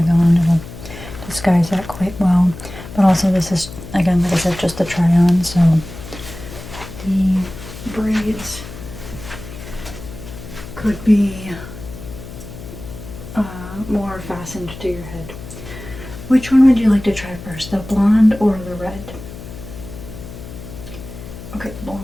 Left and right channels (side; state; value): left; noise; hum, 13 dB below the sound